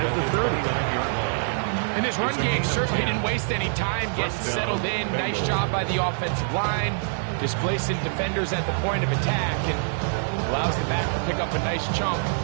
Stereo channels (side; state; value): left; silent; 62 dB below the other